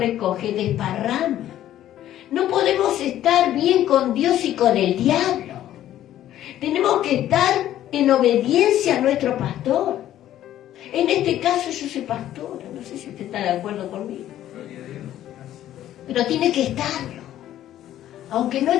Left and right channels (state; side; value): quieter; right; 12.4 dB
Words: desparrama. No podemos estar bien con Dios y con el diablo. Tenemos que estar en obediencia a nuestro pastor. En este caso yo soy pastora, no sé si usted está de acuerdo conmigo. Pero tiene que estarlo, aunque no